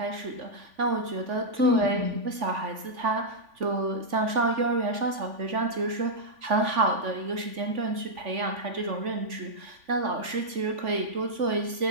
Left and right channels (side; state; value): left; late; 3.5 ms